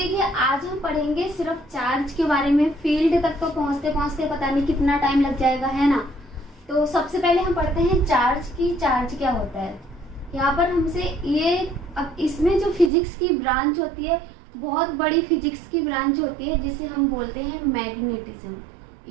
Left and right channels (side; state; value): left; drops out; at 12.9 s